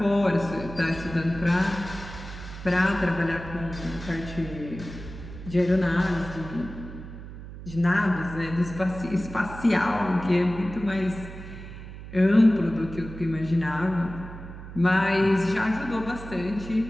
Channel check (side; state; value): right; noise; hum, 12 dB below the sound